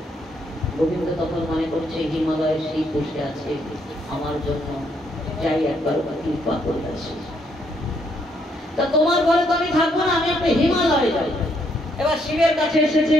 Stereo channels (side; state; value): both; normal; correlation 0.72